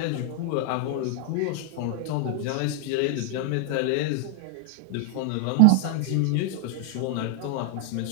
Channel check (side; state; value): both; different; correlation 0.00